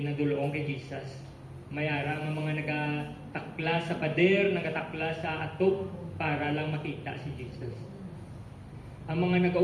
kay Jesus. Mayara ang mga nagatakla sa pader, nagatakla sa atop para lang makita si Jesus. Ang mga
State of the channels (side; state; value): both; identical; correlation 1.00